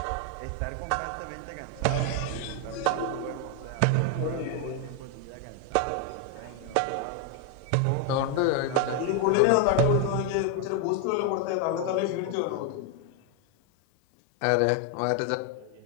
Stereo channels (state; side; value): different; both; correlation 0.01